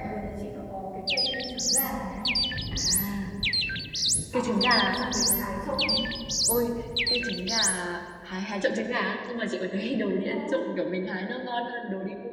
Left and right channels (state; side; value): identical; both; correlation 1.00